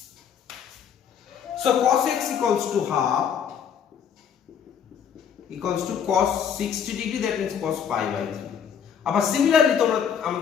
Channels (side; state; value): right; quieter; 7.9 dB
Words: So cos x equals to half equals to cos 60 degree, that means cos pi by 3. আবার similarly তোমরা